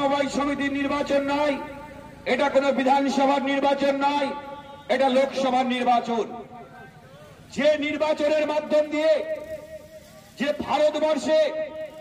সমিতির নির্বাচন নয়, এটা কোনো বিধানসভার নির্বাচন নয়, এটা লোকসভার নির্বাচন। যে নির্বাচনের মাধ্যম দিয়ে যে ভারতবর্ষে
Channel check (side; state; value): both; identical; correlation 1.00